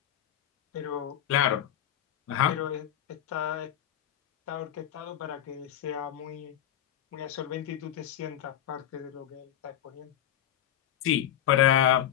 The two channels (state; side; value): quieter; right; 11.2 dB